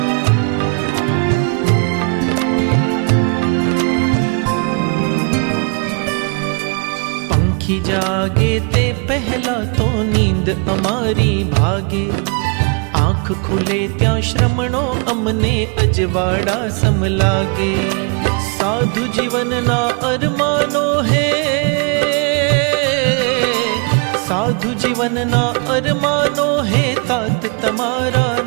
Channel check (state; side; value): quieter; left; 35.3 dB